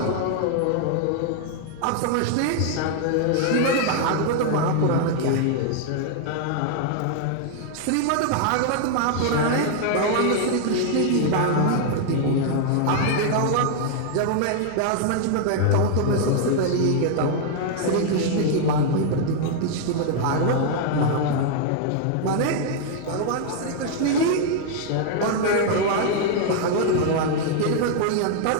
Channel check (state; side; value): different; both; correlation 0.00